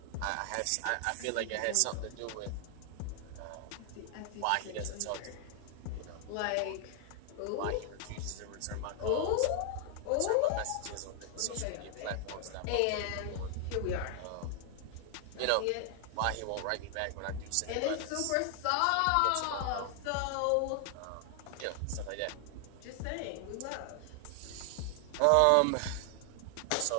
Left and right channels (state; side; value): different; both; correlation 0.00